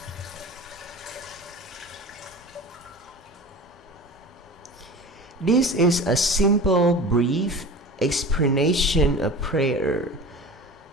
This is a simple, brief explanation of prayer.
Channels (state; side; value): normal; both; correlation 0.35